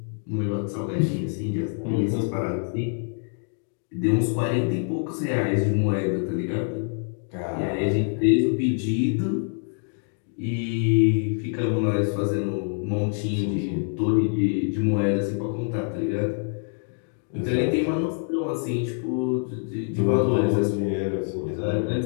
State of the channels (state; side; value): silent; right; 59 dB below the other